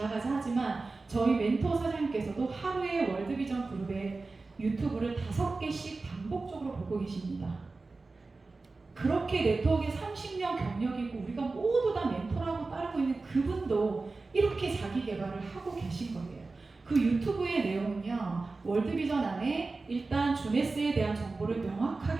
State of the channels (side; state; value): left; quieter; 3.7 dB